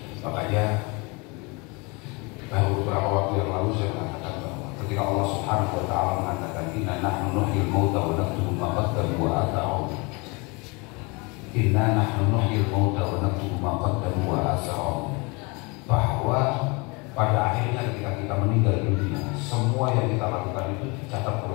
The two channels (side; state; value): right; quieter; 28.4 dB